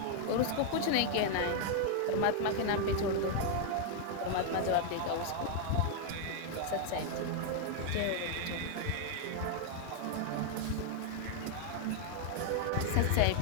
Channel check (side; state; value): both; different; correlation 0.00